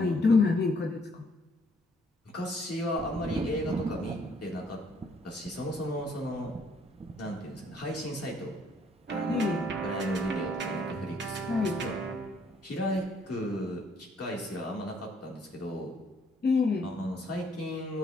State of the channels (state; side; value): normal; both; correlation 0.66